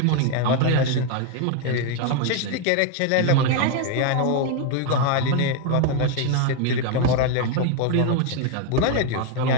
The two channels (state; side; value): different; both; correlation 0.01